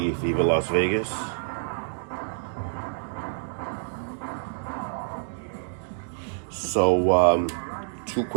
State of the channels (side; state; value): left; silent; digital silence